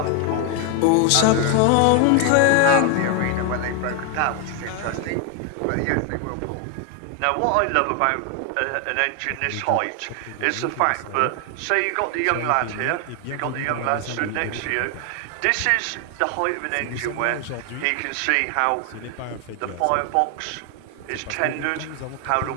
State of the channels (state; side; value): different; both; correlation 0.01